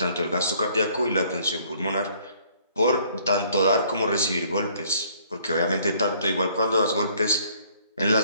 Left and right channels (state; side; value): inverted; both; correlation -0.61